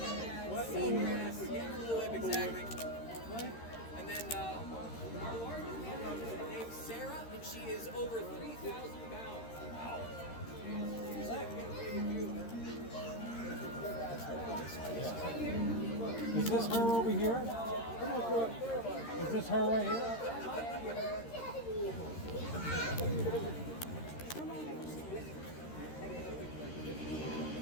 Seagrass, blue whip, exactly. And then our largest manatee is named Sarah, and she is over 3,000 pounds. Wow. Is this her over here? Is this her right here?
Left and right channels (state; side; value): late; right; 13 ms